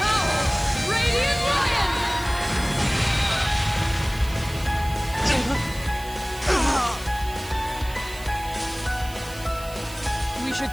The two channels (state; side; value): noise; right; hiss, 17 dB below the sound